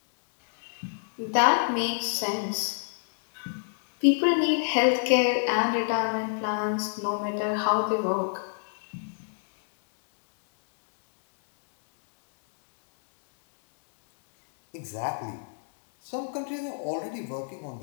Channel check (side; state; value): right; silent; digital silence